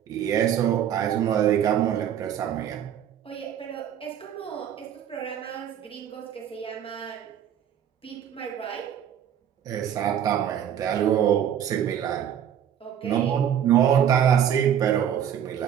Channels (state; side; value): quieter; left; 9.5 dB